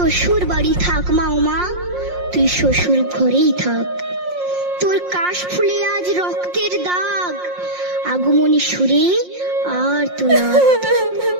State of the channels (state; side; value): late; left; 5.6 ms